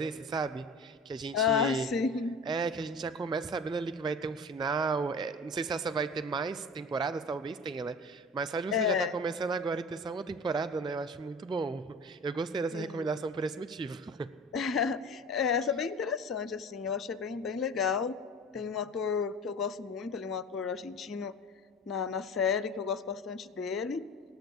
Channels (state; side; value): normal; both; correlation 0.38